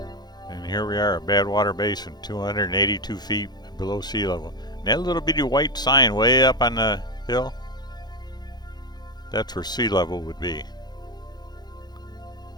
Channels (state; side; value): late; right; 0.20 ms